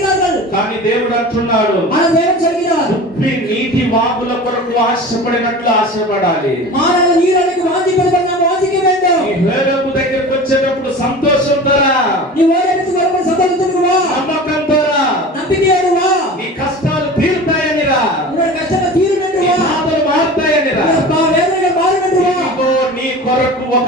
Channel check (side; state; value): both; normal; correlation 0.36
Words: కానీ దేవుడు అంటున్నాడు, ஆனால் தேவன் சொல்கிறார், ఉప్పి నీటి వాగుల కొరకు ఆశపడినట్లు ఆశపడాలి. மாறாக நீரலைக்கு வாஞ்சிப்பது போல நாம் வாஞ்சிக்க வேண்டும். ఈ హేరోబు దగ్గరికి వచ్చేటప్పుడు సంతోషంతో రా, நீ ஓரமிருந்து வரும்போது சந்தோஷத்துக்கு வா, నమ్మకంతో రా, நம்பிக்கையோடு வா. నీ కష్టాలు తీరుతాయని రా, உன்னுடைய கஷ்டங்கள் தீரும் என்று నీ வா, బాధలు మారుతాయని రా. உன்னுடைய வேதனைகள் மாறும் என்று வா. ఇదిగో నీ కొరకు ఒక